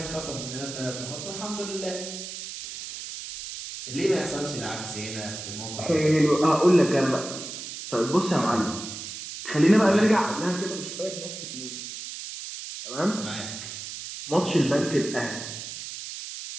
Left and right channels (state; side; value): noise; right; hiss, 9 dB below the sound